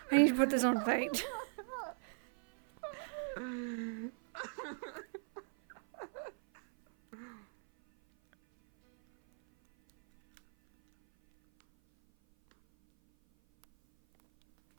to put this on fate.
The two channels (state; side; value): silent; left; 53 dB below the other